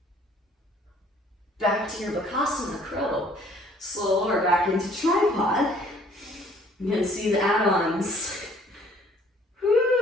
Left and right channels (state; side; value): normal; both; correlation 0.58